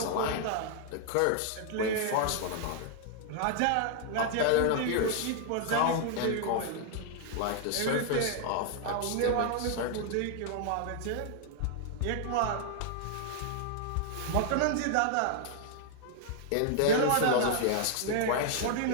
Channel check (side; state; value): both; different; correlation 0.00